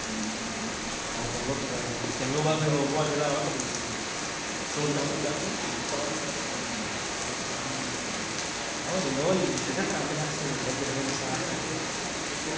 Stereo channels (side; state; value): both; identical; correlation 1.00